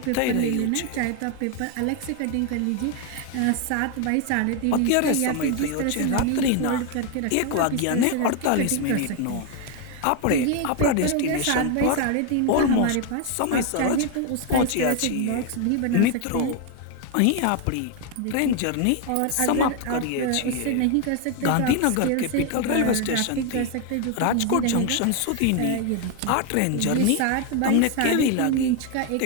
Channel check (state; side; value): different; both; correlation 0.01